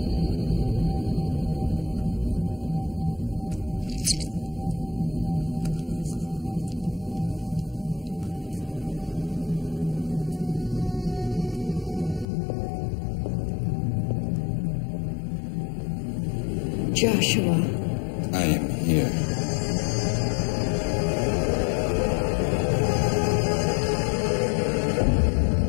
Joshua. I am here.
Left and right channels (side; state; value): right; drops out; at 12.2 s